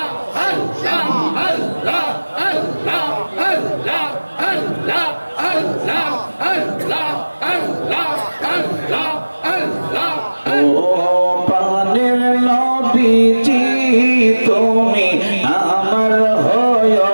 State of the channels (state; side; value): inverted; both; correlation -1.00